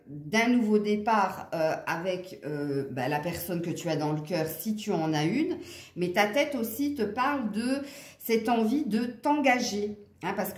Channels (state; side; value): identical; both; correlation 1.00